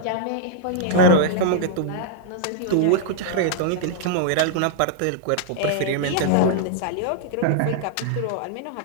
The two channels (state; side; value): different; both; correlation -0.01